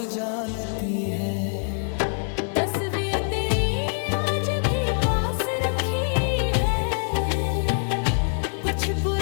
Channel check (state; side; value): silent; right; 62 dB below the other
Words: जानती है। तस्वीर तेरी आज भी पास रखी है, कुछ